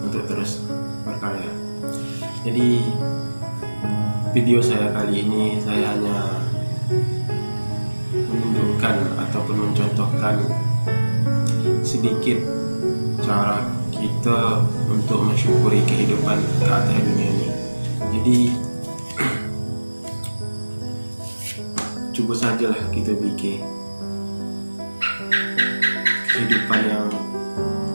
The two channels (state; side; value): inverted; both; correlation -1.00